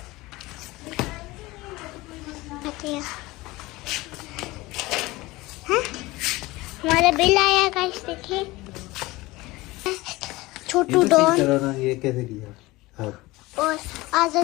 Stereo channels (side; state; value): right; quieter; 20.4 dB